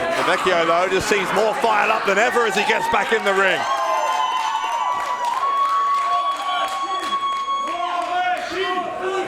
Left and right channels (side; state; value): both; identical; correlation 1.00